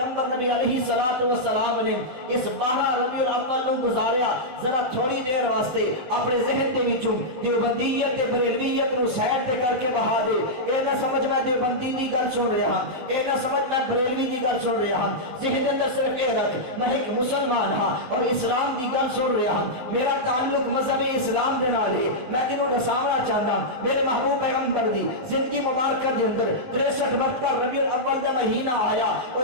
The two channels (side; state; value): left; late; 19 ms